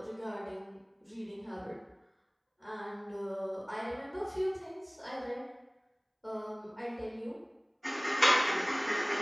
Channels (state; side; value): identical; both; correlation 1.00